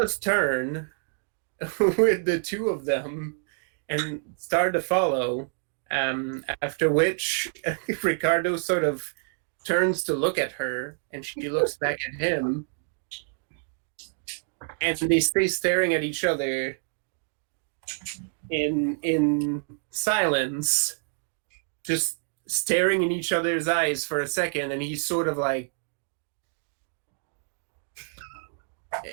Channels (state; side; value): silent; left; 58 dB below the other